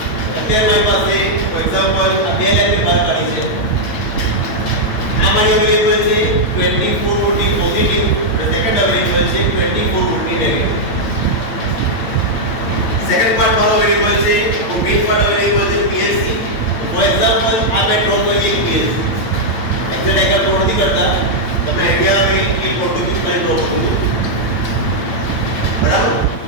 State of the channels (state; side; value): late; right; 8.9 ms